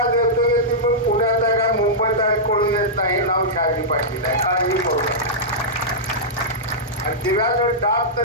देतोय की तुम्ही पुण्यात आहे का मुंबईत आहे कळून येत नाही. नाव शहाजी पाटील आहे. काळजी करू नका. आणि दिव्याचं डाब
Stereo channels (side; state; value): both; normal; correlation -0.11